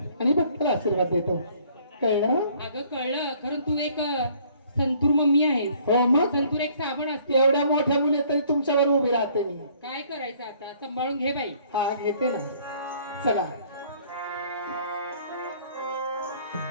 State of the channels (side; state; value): both; inverted; correlation -0.60